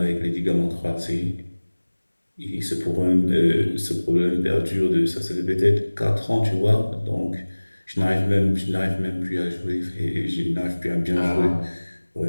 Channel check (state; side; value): inverted; both; correlation -1.00